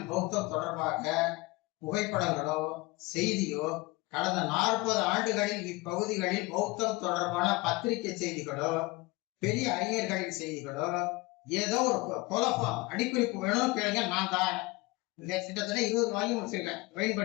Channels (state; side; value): quieter; right; 22.5 dB